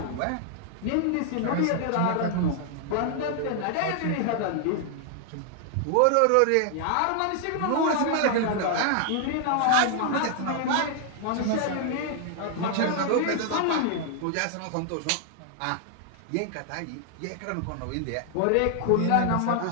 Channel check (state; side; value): different; both; correlation 0.00